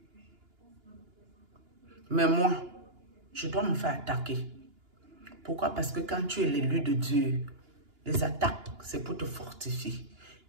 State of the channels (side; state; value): left; late; 2.9 ms